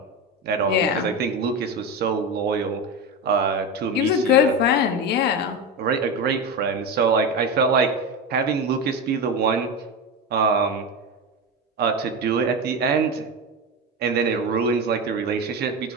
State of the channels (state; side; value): normal; both; correlation 0.19